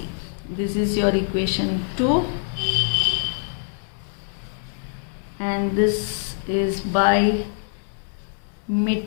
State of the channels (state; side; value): silent; right; digital silence